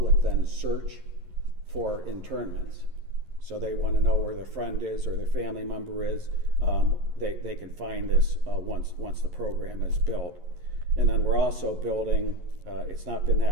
then search for internments. So they want to know where their friend is or their family member is. They can find this once the program is built. And then we're also building, it's not been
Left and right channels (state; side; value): late; left; 11 ms